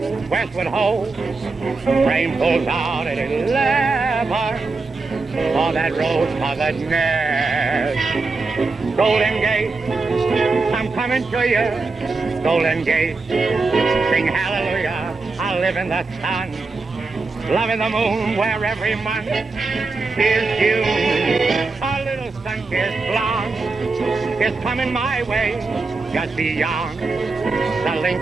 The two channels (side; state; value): left; quieter; 3.8 dB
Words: westward ho. Train pulls out at 11 for that rose-colored nest. Golden Gate, I'm coming to you. Golden Gate, sing hallelujah. I live in the sun, loving the moon where every month is June. A little sun-kissed blonde is coming my way, just beyond the